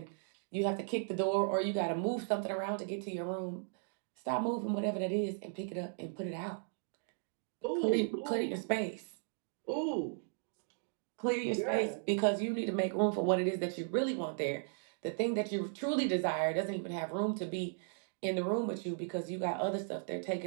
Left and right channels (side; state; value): left; silent; digital silence